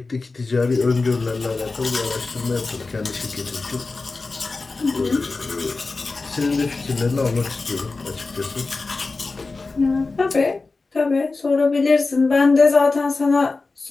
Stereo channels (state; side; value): quieter; right; 3.8 dB